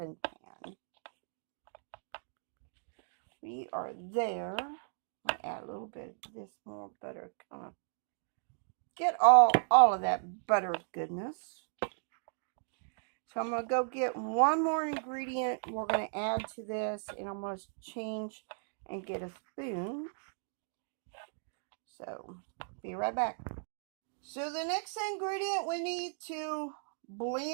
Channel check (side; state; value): left; silent; digital silence